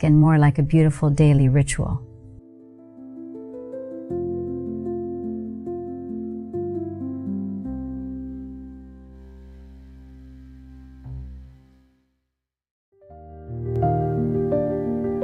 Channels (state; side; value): identical; both; correlation 1.00